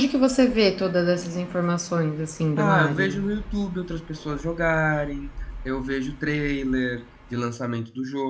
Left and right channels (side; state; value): both; identical; correlation 1.00